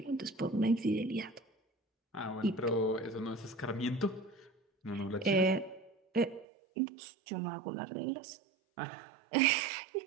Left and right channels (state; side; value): drops out; left; at 6.5 s